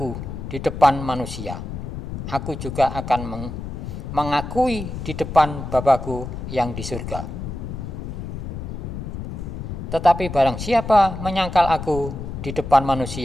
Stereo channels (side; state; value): left; noise; rumble, 7 dB below the sound